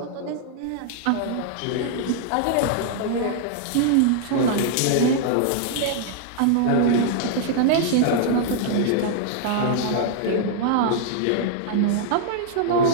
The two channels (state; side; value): different; both; correlation 0.00